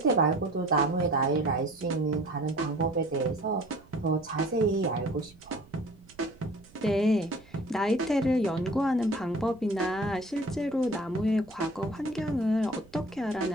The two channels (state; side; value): noise; right; rumble, 25 dB below the sound